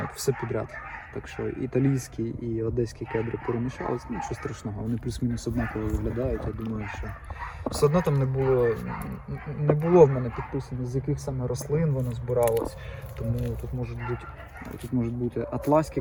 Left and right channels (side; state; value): both; identical; correlation 1.00